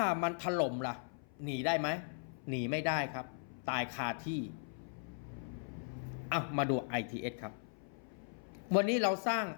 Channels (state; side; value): silent; right; 52 dB below the other